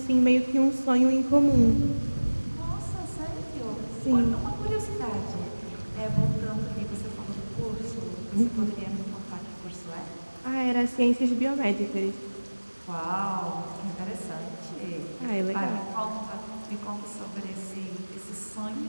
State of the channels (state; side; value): inverted; both; correlation -1.00